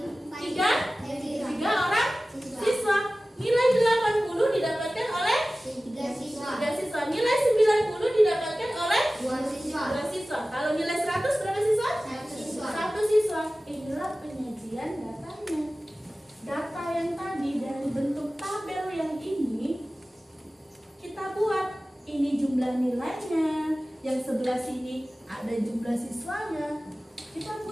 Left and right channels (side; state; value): both; normal; correlation 0.96